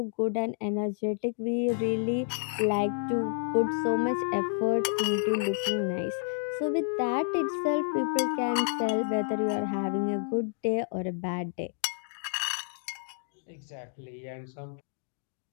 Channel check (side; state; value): right; silent; digital silence